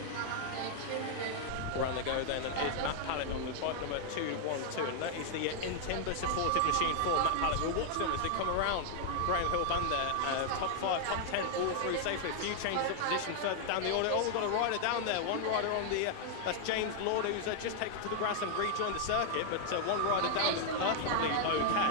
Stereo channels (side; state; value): both; different; correlation 0.00